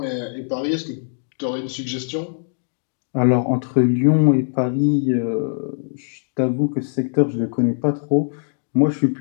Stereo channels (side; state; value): right; silent; digital silence